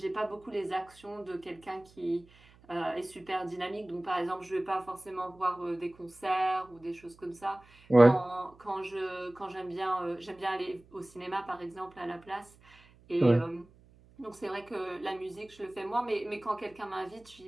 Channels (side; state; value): right; noise; hum, 26 dB below the sound